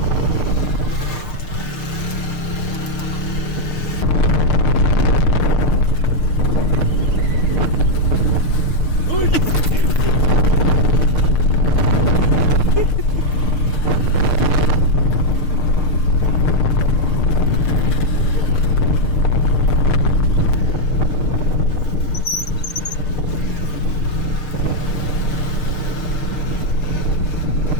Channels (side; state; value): right; late; 6.6 ms